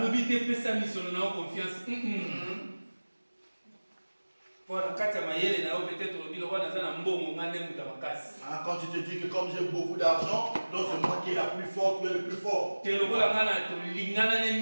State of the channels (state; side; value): inverted; both; correlation -1.00